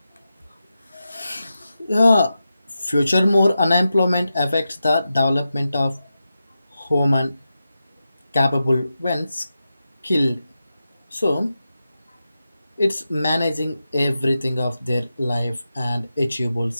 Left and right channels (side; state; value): both; inverted; correlation -0.90